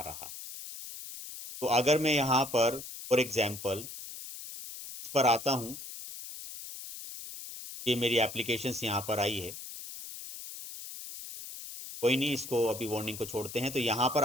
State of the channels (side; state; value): left; noise; hiss, 11 dB below the sound